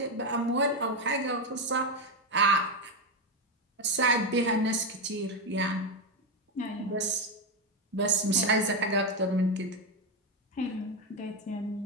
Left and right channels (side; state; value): both; normal; correlation 0.09